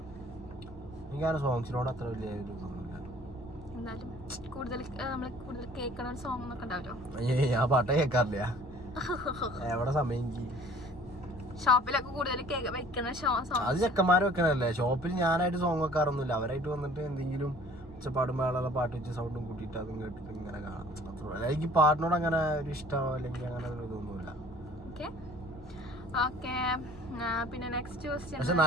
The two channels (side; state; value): both; normal; correlation 0.52